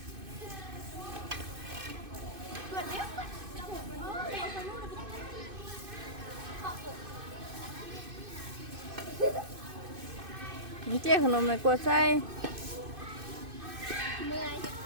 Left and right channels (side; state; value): left; late; 2.5 ms